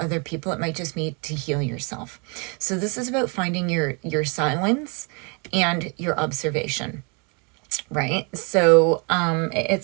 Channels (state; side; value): quieter; left; 33.8 dB